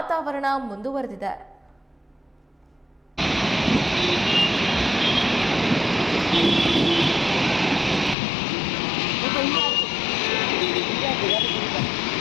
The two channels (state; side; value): drops out; right; at 8.2 s